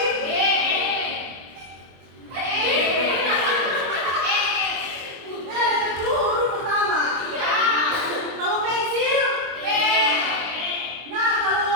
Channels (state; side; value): late; left; 23 ms